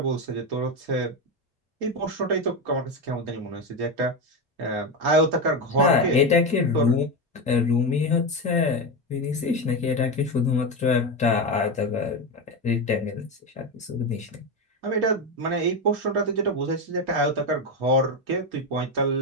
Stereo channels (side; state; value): both; normal; correlation 0.14